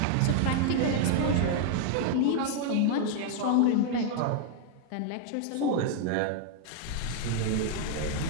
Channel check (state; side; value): different; both; correlation 0.00